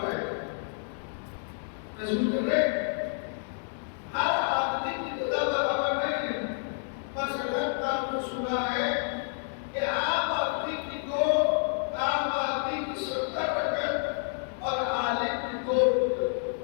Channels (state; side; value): silent; right; digital silence